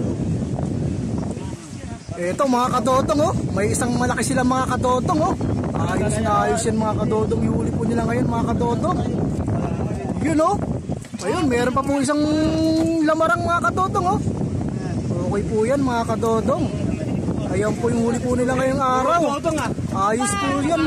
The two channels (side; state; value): both; identical; correlation 1.00